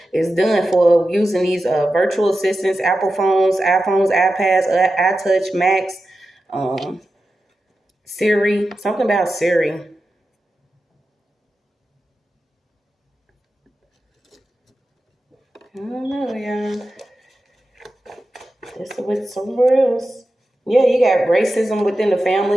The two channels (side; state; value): both; normal; correlation 0.92